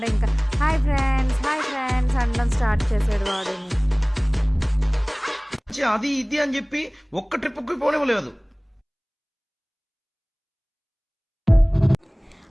ఇంకా హాయ్ ఫ్రెండ్స్ అనడం స్టార్ట్ చేసాడు వాడిని. అది ఇది అని చెప్పి ఒక్క ట్రిప్కి పోనివ్వలేదు.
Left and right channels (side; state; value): both; identical; correlation 1.00